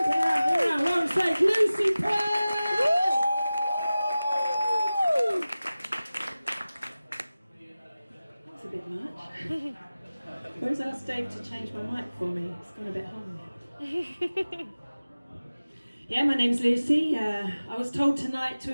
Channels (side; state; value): both; inverted; correlation -0.97